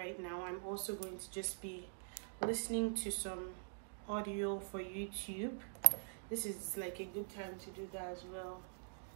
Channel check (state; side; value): silent; left; digital silence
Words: now, I'm also going to just be listening to some audio for YouTube. This is like a good time to do that as well.